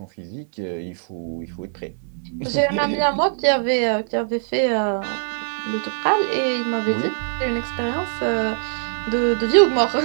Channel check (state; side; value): silent; left; 63 dB below the other